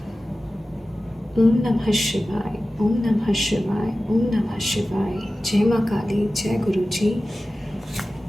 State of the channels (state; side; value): normal; both; correlation 0.95